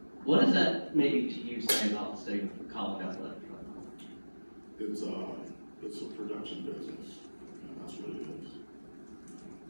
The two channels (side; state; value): both; inverted; correlation -1.00